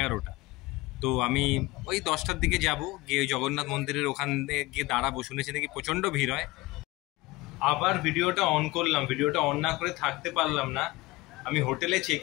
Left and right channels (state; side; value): quieter; right; 20.7 dB